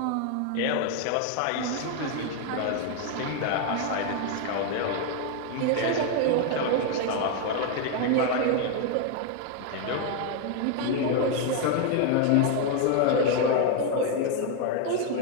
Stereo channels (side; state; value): both; different; correlation 0.01